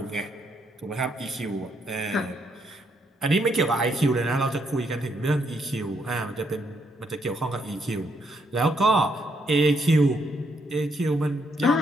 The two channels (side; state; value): both; normal; correlation 0.75